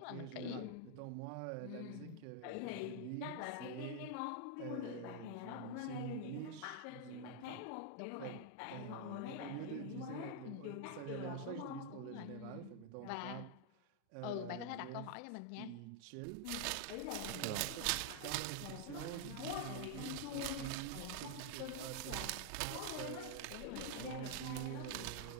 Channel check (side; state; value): both; different; correlation 0.00